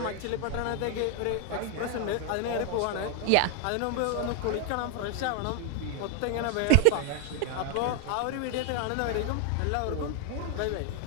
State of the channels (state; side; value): different; both; correlation 0.00